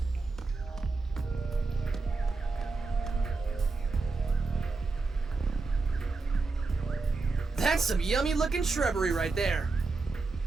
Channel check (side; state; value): left; quieter; 3.9 dB